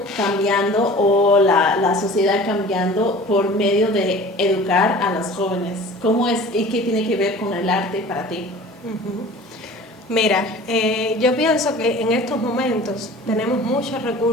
cambiando o la sociedad cambiando por medio de educar a los jóvenes? ¿Cómo es y qué tiene que ver con el arte para ti? Mira, yo pienso que en estos momentos tenemos muchos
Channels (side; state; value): both; normal; correlation 0.43